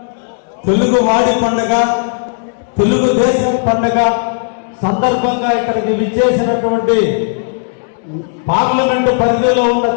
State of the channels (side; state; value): right; silent; digital silence